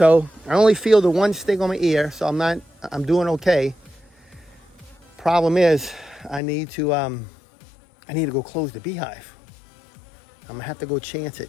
I only feel the one sting on my ear, so I'm doing okay. Problem is, I need to go close the beehive. I'm gonna have to go chance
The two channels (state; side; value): drops out; right; at 6.4 s